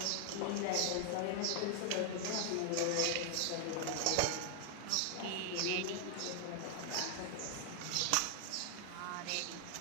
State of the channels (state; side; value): different; both; correlation 0.00